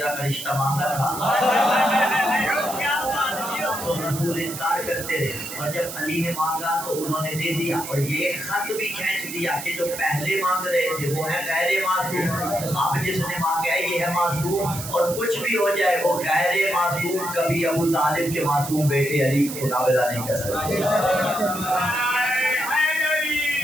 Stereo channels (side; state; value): right; noise; hiss, 9 dB below the sound